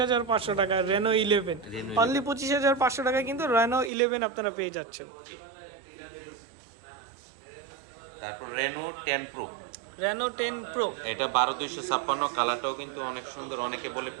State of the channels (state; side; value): drops out; left; at 3.9 s